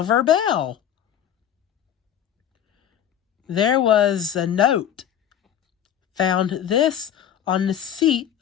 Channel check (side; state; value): right; quieter; 9.8 dB